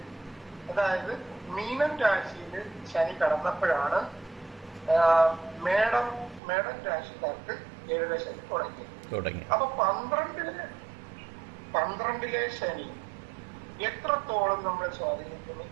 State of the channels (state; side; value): drops out; left; at 6.4 s